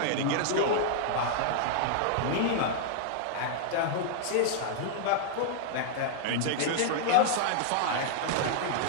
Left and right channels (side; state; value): both; different; correlation -0.01